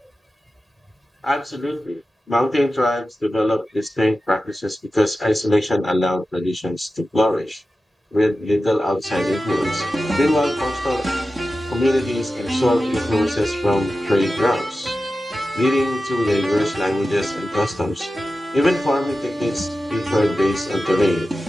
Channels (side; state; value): both; normal; correlation 0.93